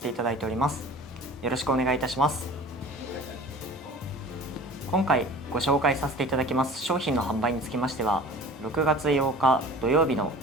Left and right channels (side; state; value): both; normal; correlation 0.42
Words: ていただいております。よろしくお願いいたします。今回ご紹介させていただきます商品の販売につきましては、6月8日土曜日の